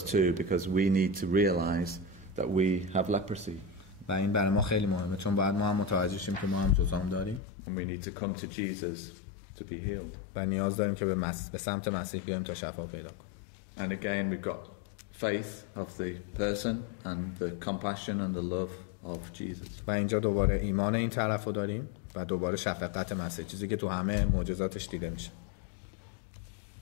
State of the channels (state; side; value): drops out; right; at 7.4 s